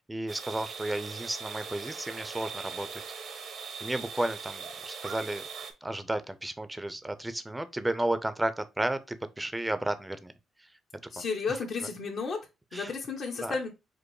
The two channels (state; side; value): normal; both; correlation 0.90